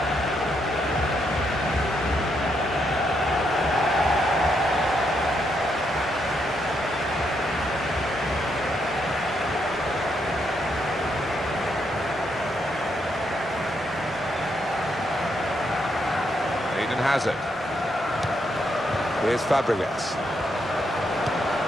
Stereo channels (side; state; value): both; normal; correlation 0.78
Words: Eden Hazard. Here's Fabregas.